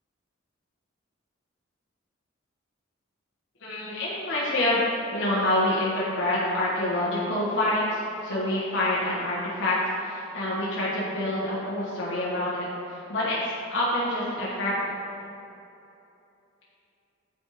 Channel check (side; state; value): both; normal; correlation 0.06